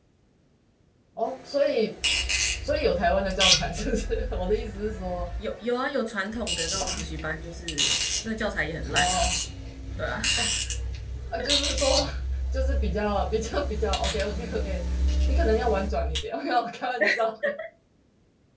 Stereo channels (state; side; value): identical; both; correlation 1.00